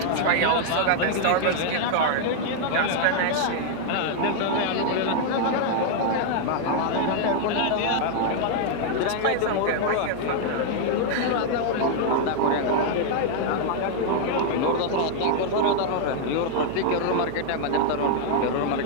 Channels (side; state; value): both; different; correlation 0.00